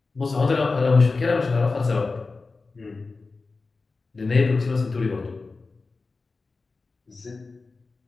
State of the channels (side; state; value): right; quieter; 3.9 dB